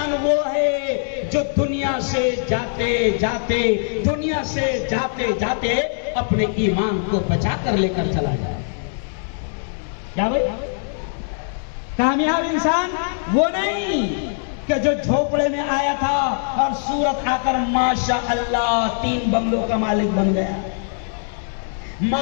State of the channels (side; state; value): right; silent; 65 dB below the other